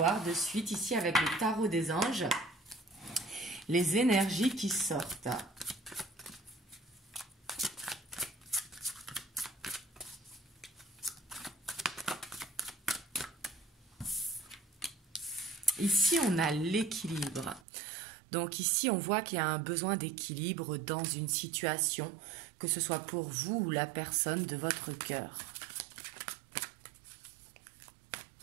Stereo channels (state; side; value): drops out; left; at 17.6 s